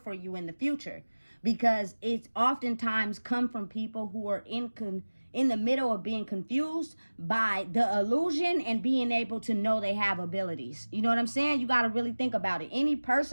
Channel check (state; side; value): inverted; both; correlation -1.00